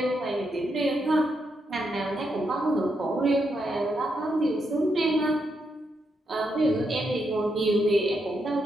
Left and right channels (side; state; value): both; normal; correlation 0.81